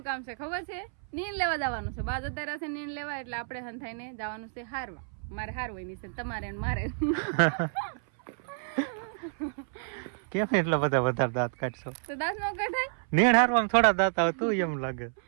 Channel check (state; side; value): silent; left; 58 dB below the other